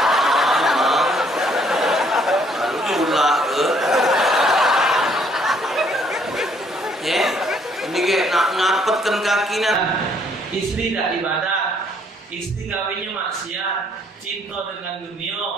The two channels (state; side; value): normal; both; correlation 0.66